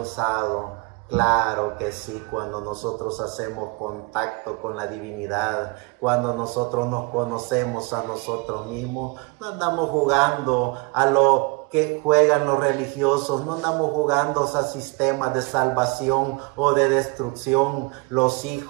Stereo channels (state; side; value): quieter; left; 28.2 dB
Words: Claro que sí, cuando nosotros hacemos contacto con la divinidad, cuando nosotros nos conocemos a nosotros mismos, no andamos jugando a lo que juegan los religiosos, no andamos jugando a sistemas de salvación o de destrucción. Los